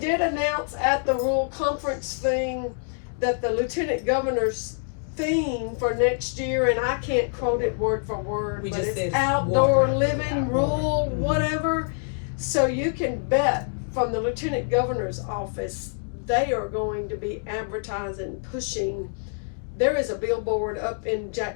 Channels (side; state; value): right; silent; digital silence